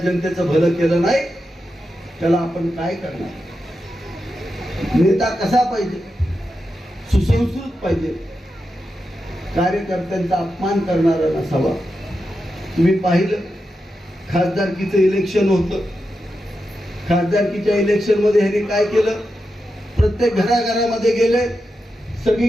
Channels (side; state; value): both; normal; correlation 0.88